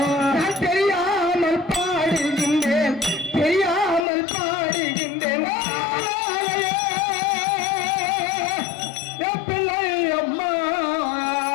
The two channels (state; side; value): drops out; right; at 4.0 s